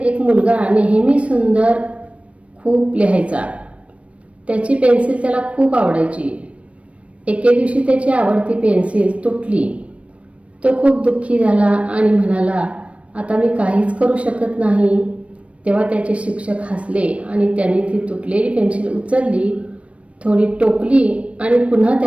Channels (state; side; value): late; left; 0.063 ms